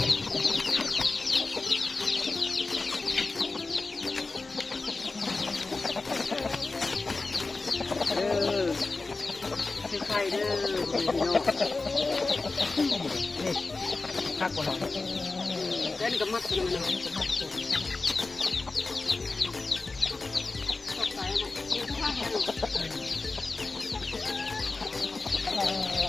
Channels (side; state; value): right; quieter; 3.6 dB